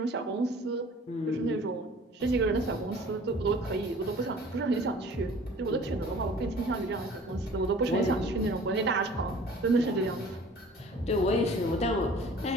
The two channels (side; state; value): both; normal; correlation 0.48